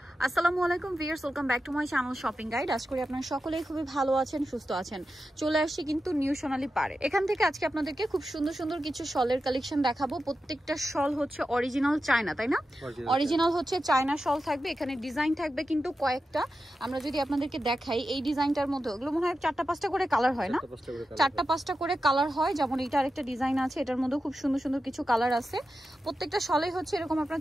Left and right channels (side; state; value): both; normal; correlation 0.91